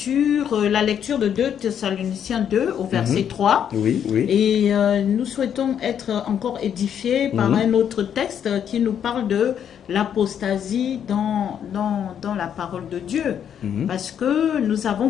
la lecture de 2 Thessaloniciens 2 au verset 3. Oui. Et nous souhaitons être encore édifiés par un autre texte qui nous parle de l'apostasie dans la parole de Dieu. Parce que nous avons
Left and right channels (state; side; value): quieter; right; 8.8 dB